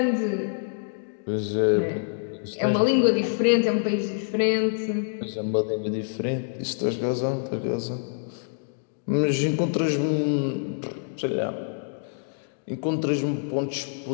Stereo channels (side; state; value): right; silent; digital silence